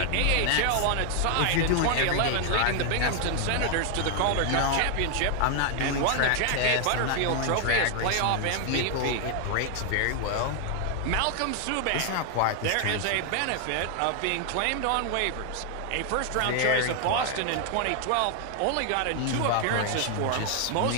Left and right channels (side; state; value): both; different; correlation 0.00